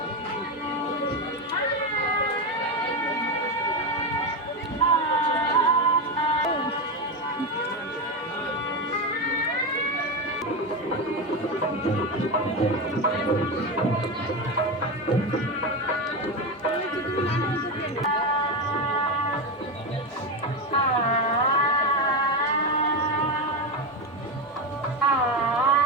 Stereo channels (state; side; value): normal; both; correlation 0.15